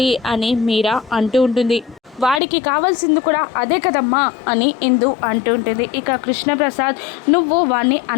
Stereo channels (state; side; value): drops out; right; at 2.4 s